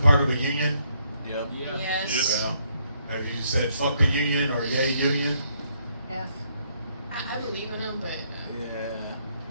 of a union? Yep. Yeah. Yes. Yeah. Have you said fuck the union or yay union? F. I believe in them, but Yeah.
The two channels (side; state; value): both; inverted; correlation -0.72